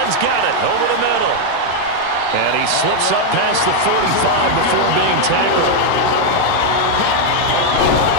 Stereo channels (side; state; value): both; different; correlation 0.00